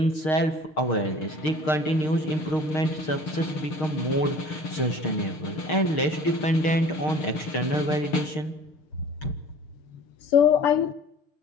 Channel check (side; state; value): right; late; 6.5 ms